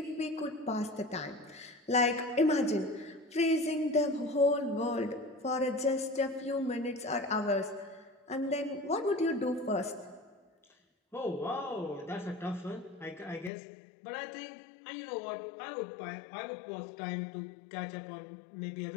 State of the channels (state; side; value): drops out; right; at 13.5 s